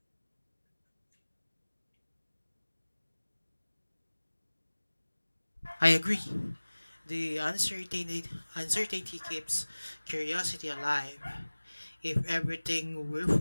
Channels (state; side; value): inverted; both; correlation -1.00